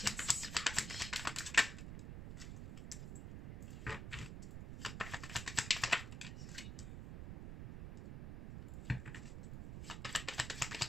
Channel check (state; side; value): noise; right; rumble, 7 dB below the sound